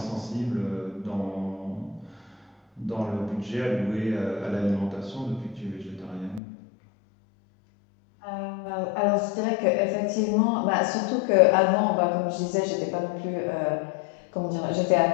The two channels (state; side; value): drops out; right; at 6.4 s